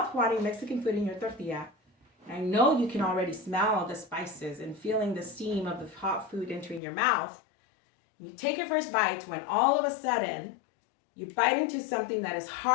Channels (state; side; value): drops out; right; at 6.8 s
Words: Mexican food in your tortilla. And I know you can already smell the spices and feeling the steam of the hot food entering your mouth. You take your first bite when all of a sudden you bite into something that is